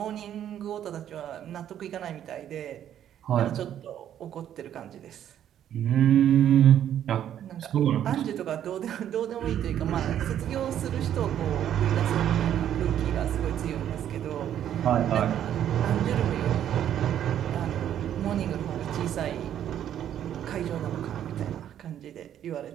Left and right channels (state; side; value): quieter; left; 10.5 dB